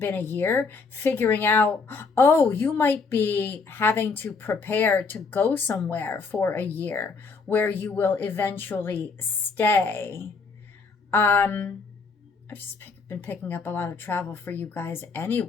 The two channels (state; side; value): quieter; right; 4.6 dB